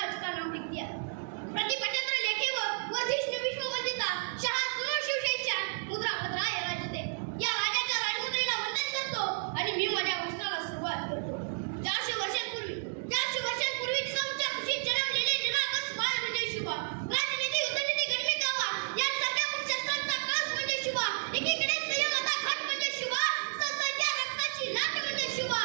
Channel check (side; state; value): left; silent; 57 dB below the other